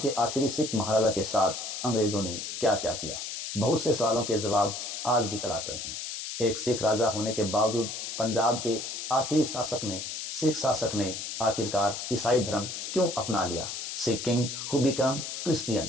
के आखिरी सिख महाराजा के साथ अंग्रेजों ने क्या क्या किया। बहुत से सवालों के जवाब आज भी तलाश रहे हैं। एक सिख राजा होने के बावजूद पंजाब के आखिरी सिख शासक ने आखिरकार ईसाई धर्म क्यों अपना लिया? Sikh king who become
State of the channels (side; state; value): left; noise; hiss, 6 dB below the sound